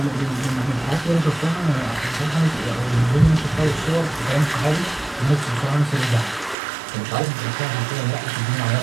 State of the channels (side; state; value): left; drops out; at 6.6 s